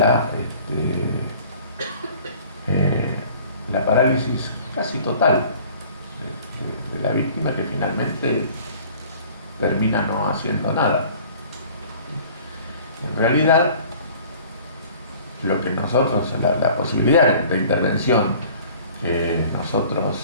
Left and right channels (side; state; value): both; inverted; correlation -0.50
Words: parálisis casi total de la víctima, que finalmente termina no haciendo nada. En realidad, lo que nosotros, la posibilidad de intervención que